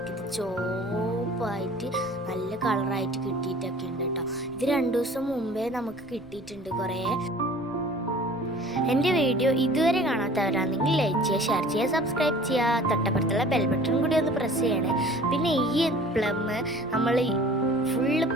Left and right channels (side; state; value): right; noise; rumble, 23 dB below the sound